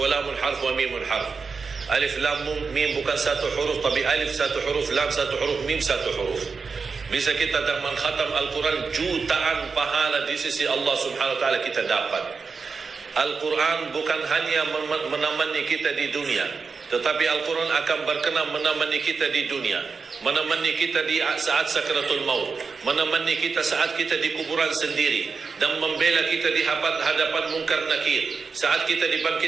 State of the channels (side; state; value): left; quieter; 4.9 dB